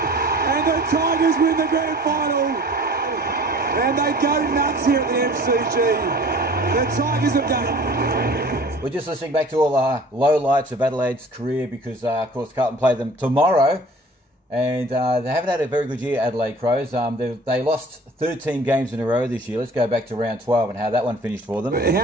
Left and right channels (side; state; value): both; normal; correlation 0.47